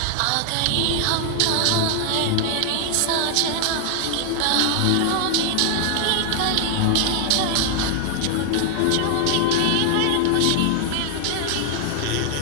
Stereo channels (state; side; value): different; both; correlation 0.00